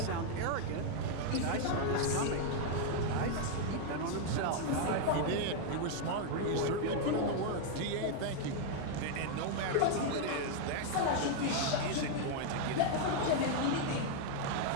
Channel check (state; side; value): different; both; correlation 0.00